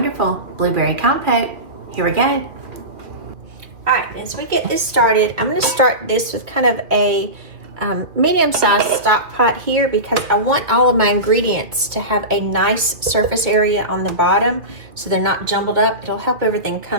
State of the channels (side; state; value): left; late; 2.4 ms